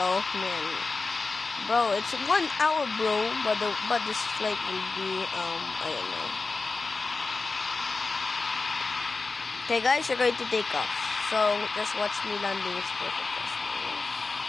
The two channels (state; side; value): quieter; right; 3.9 dB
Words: man. Bro, it's 1 hour, bro. But this flight will be, I don't know. Okay guys, you're going to take off. So just watch me landing. It's perfect.